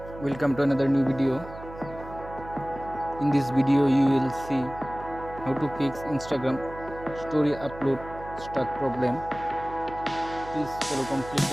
Welcome to another new video. In this video you will see how to fix Instagram story upload stuck problem. Please follow complete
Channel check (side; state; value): right; noise; hum, 15 dB below the sound